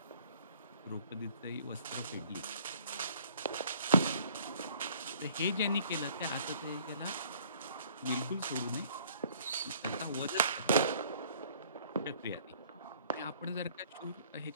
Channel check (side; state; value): both; inverted; correlation -0.57